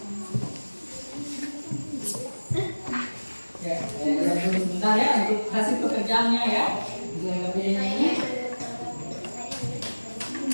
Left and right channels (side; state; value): both; inverted; correlation -1.00